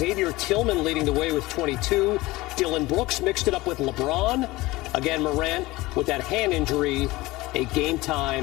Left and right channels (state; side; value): quieter; right; 19.9 dB